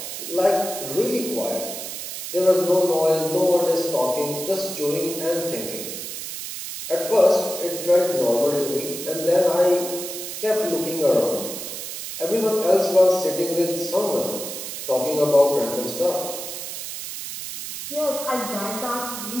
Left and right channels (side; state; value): right; noise; hiss, 7 dB below the sound